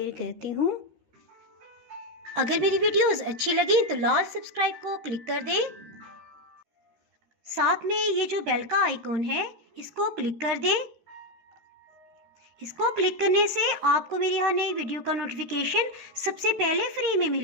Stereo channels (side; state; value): left; late; 13 ms